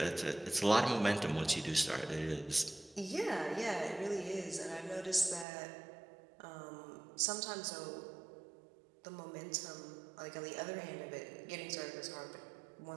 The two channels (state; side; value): drops out; left; at 5.5 s